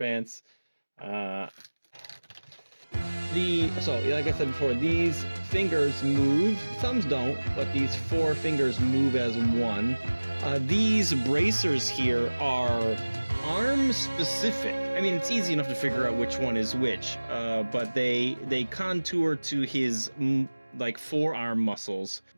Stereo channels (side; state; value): both; inverted; correlation -1.00